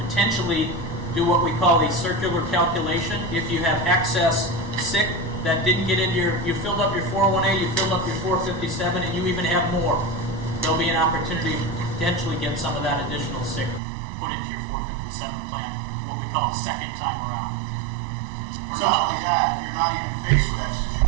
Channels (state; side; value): drops out; left; at 13.8 s